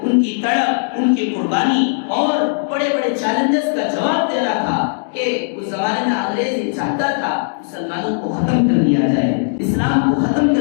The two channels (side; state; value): right; silent; digital silence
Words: ان کی تڑپ، ان کی قربانی اور بڑے بڑے چیلنجز کا جواب دینا تھا کہ اس زمانے میں انگریز یہ چاہتا تھا مسلمانوں کو ختم کر دیا جائے، اسلام کو ختم